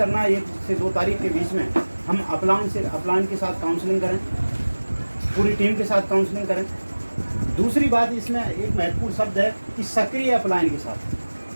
है 1 से 2 तारीख के बीच में हम अपलाइन के साथ काउंसलिंग करें, पूरी टीम के साथ काउंसलिंग करें। दूसरी बात इसमें एक महत्वपूर्ण शब्द है कि सक्रिय अपलाइन के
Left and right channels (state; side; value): inverted; both; correlation -1.00